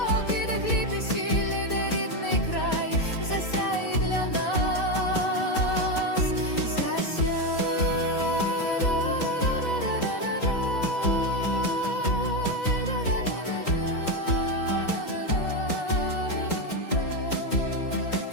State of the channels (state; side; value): late; right; 4.1 ms